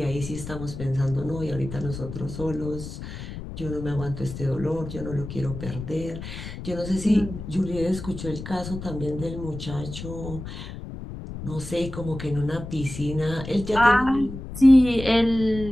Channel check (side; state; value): left; noise; rumble, 10 dB below the sound